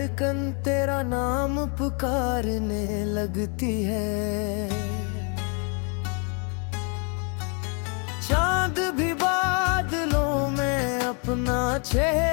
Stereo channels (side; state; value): right; quieter; 37.5 dB